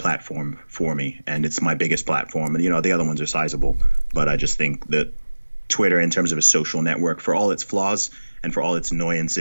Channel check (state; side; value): inverted; both; correlation -1.00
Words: for me, and it's my biggest platform. And the other ones are sizable, but I just think that Twitter, in terms of a social network, for all its flaws and for all its